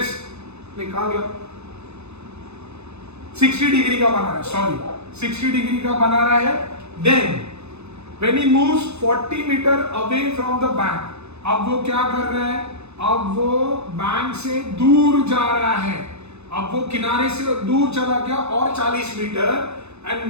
कहा गया 60 डिग्री का बना रहा है, 60 डिग्री का बना रहा है। Then when he moves 40 meter away from the bank, अब वो क्या कर रहा है, अब वो बैंक से दूर जा रहा है, अब वो किनारे से दूर चला गया और 40 meter,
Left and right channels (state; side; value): late; left; 0.81 ms